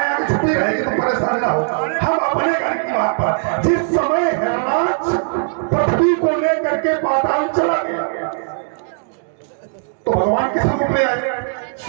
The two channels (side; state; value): left; silent; 67 dB below the other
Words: यहाँ की छुट्टी रहेगी, तुम परेशान ना हो। हम अपने घर की बात पर, जिस समय हिरणाक्ष पृथ्वी को लेकर के पाताल चला गया तो भगवान किस रूप में आए?